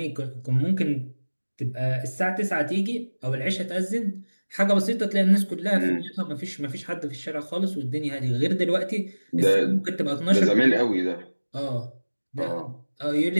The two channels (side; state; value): both; inverted; correlation -1.00